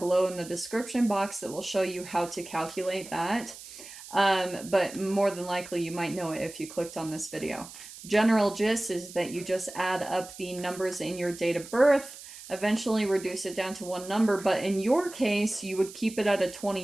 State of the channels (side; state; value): right; noise; hiss, 15 dB below the sound